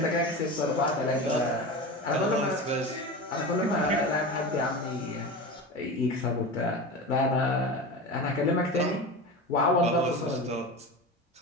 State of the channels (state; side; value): normal; both; correlation 0.28